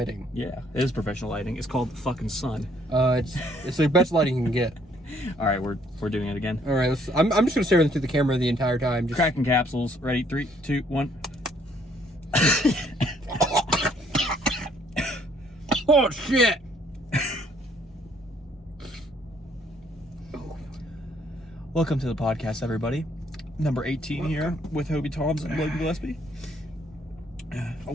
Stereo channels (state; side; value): normal; both; correlation 0.65